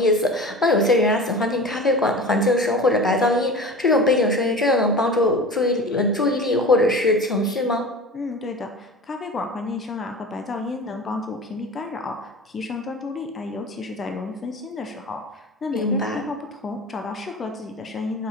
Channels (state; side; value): normal; both; correlation 0.35